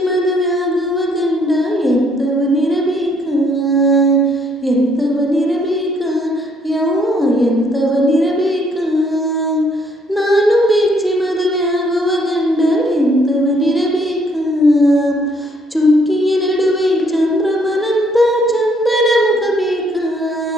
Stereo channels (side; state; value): both; normal; correlation 0.67